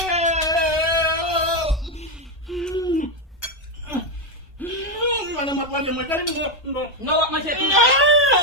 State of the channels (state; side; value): normal; both; correlation 0.06